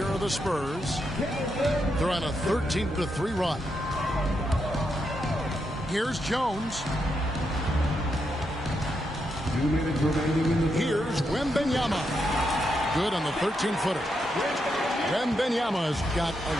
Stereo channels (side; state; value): both; normal; correlation 0.82